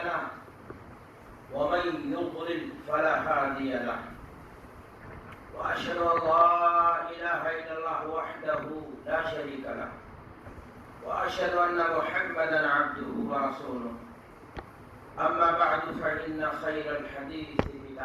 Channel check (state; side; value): identical; both; correlation 1.00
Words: ومن يضلل فلا هادي له وأشهد أن لا إله إلا الله وحده لا شريك له وأشهد أن محمدا عبده ورسوله أما بعد فإن خير الحديث